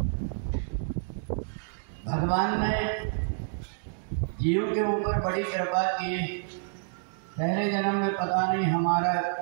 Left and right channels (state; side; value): silent; left; digital silence